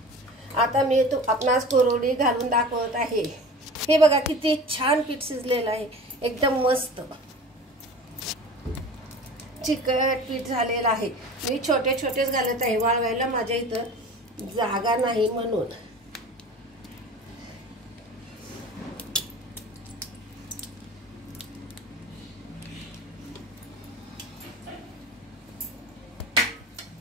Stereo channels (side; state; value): both; normal; correlation 0.38